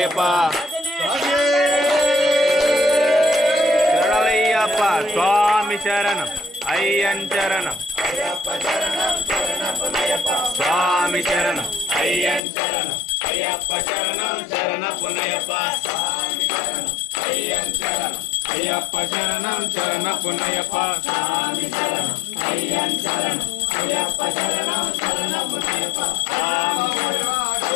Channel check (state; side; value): drops out; right; at 12.4 s